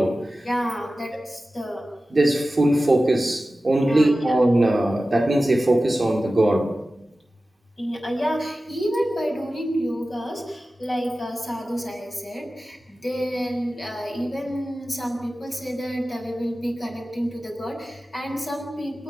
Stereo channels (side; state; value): both; normal; correlation 0.95